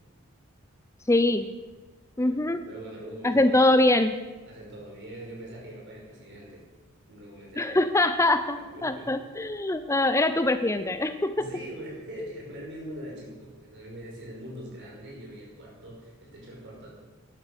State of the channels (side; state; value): both; normal; correlation 0.58